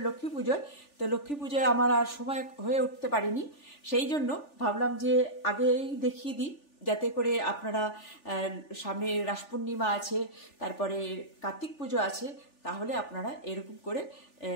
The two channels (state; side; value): late; right; 3.4 ms